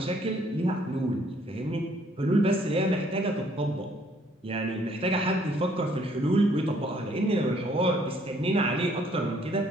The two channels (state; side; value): normal; both; correlation 0.64